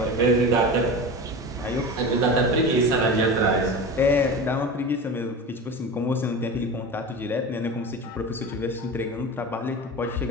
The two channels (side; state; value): both; normal; correlation 0.29